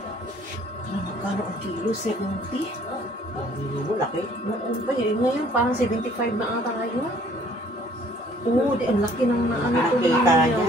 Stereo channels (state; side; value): normal; both; correlation 0.58